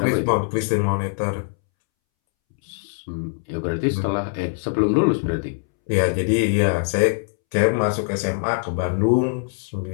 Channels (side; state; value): right; silent; 64 dB below the other